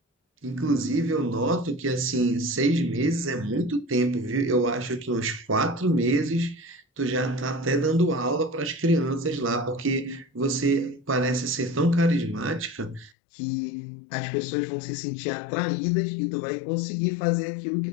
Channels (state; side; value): drops out; right; at 13.1 s